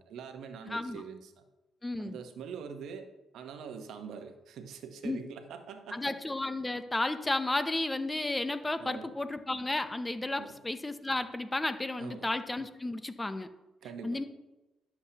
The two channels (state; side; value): normal; both; correlation 0.94